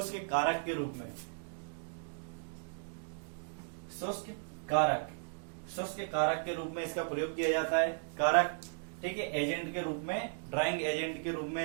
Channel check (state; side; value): silent; left; digital silence